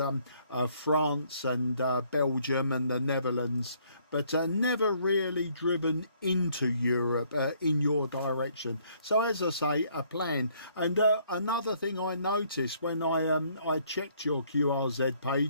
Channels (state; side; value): inverted; both; correlation -0.65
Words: France and Belgium and the Netherlands, but never really driven into Europe in your direction. So as I say, a plan. And another thing I noticed when I checked your QRZ